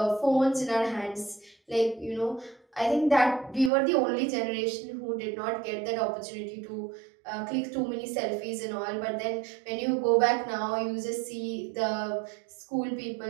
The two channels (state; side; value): drops out; left; at 3.7 s